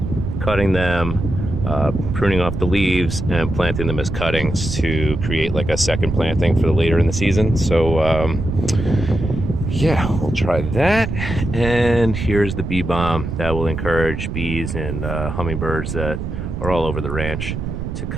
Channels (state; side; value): noise; right; rumble, 5 dB below the sound